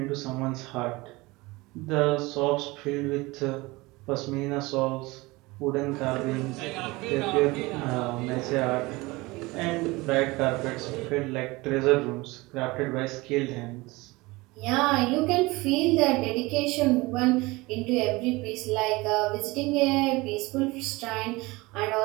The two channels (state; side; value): quieter; left; 22.4 dB